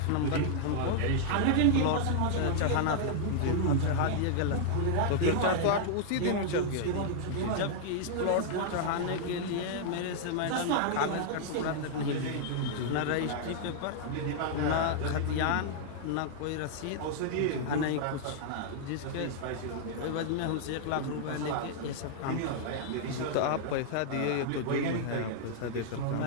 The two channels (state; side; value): different; both; correlation -0.01